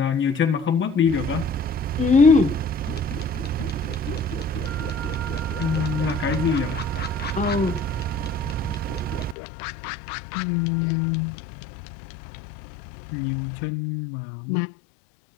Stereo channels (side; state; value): right; drops out; at 9.3 s